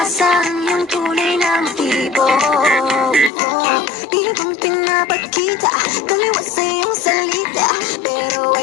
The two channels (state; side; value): drops out; right; at 3.3 s